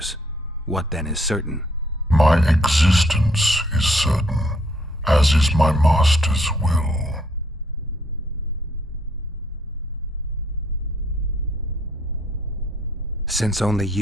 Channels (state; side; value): normal; both; correlation 0.67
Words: What then is certain? My existence is certain, as is my master's will. Since only